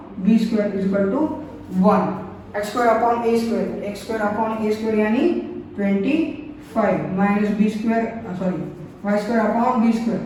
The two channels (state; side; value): identical; both; correlation 1.00